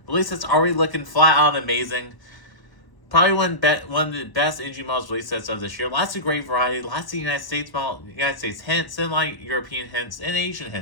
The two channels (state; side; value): late; right; 1.0 ms